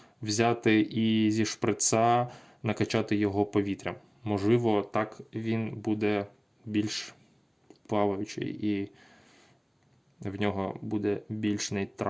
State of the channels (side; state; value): both; identical; correlation 1.00